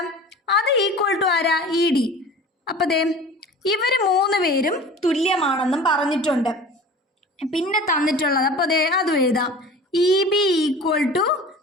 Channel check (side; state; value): both; normal; correlation 0.40